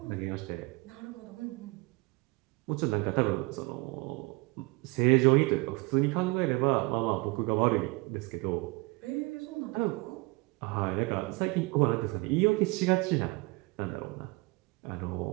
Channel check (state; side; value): quieter; left; 24.9 dB